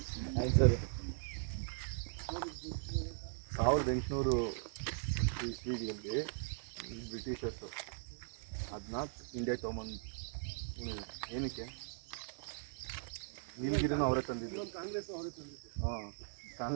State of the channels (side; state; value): left; silent; digital silence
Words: ಆಯ್ತು sir. 1800 ಇಸ್ವಿಗಳಲ್ಲಿ Britishers ಅದನ್ನ ಇಂಡಿಯಾ ತೊಗೊಂಬಂದು ಏನಕ್ಕೆ? ನೀಲಗಿರಿನೂ ಅವರೇ ತಂದಿದ್ದು. ಹಾಂ,